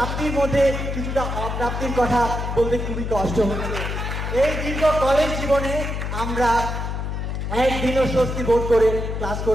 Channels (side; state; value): left; noise; hum, 3 dB below the sound